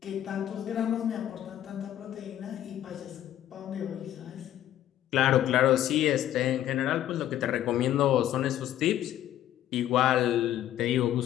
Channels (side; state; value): right; quieter; 12.1 dB